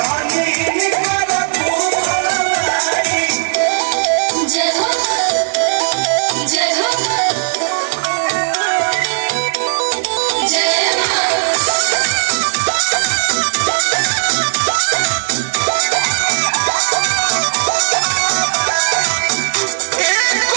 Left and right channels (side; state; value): left; silent; 69 dB below the other